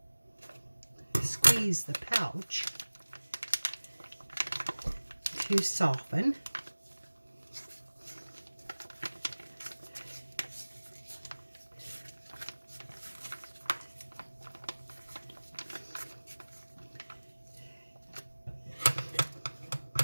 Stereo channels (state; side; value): inverted; both; correlation -1.00